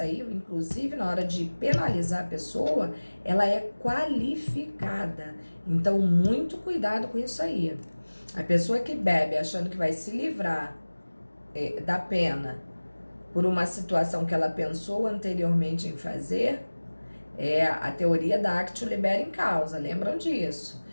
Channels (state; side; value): inverted; both; correlation -1.00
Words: inclusive na hora de penalizar a pessoa, ela é qualificada. Então, muito cuidado com isso aí. A pessoa que bebe achando que vai se livrar da pena por uma situação que ela pensou anteriormente em fazer, a teoria da actio libera in causa, lembram disso?